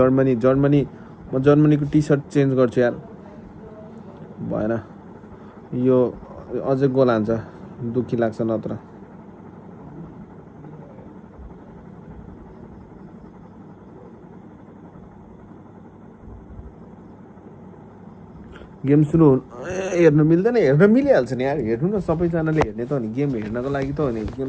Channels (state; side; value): identical; both; correlation 1.00